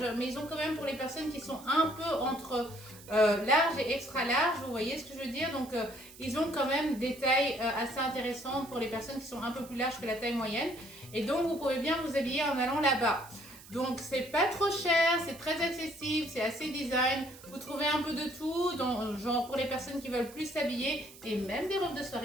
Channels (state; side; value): noise; right; hiss, 19 dB below the sound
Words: mais ils ont quand même pour les personnes qui sont un peu entre large et extra large, vous voyez ce que je veux dire. Donc ils ont quand même des tailles assez intéressantes pour les personnes qui sont un peu plus larges que la taille moyenne. Et donc vous pouvez bien vous habiller en allant là-bas. Donc c'est pas trop cher, c'est très accessible, c'est assez design. Vous trouvez un peu de tout, donc, genre pour les personnes qui veulent plus s'habiller et même des robes de